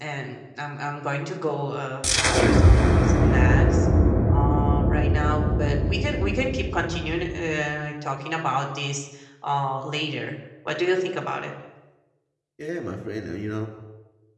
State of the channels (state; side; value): identical; both; correlation 1.00